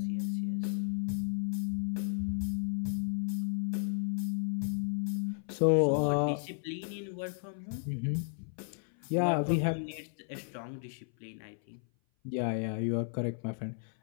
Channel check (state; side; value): silent; right; 55 dB below the other